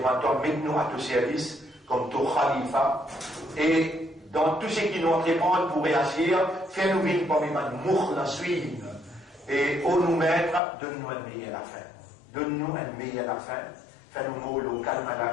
mettez-nous à ton service, comme ton khalifa, et dans tout ce qui nous répond pour réagir, fais-nous vivre comme une mour la suivre, et au nous mettre, donne-nous un meilleur la fin. Donne-nous un meilleur la fin, fais-nous mourir au calme à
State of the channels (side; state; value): right; drops out; at 10.6 s